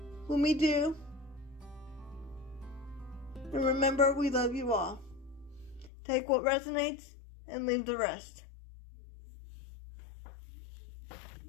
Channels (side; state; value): right; drops out; at 5.9 s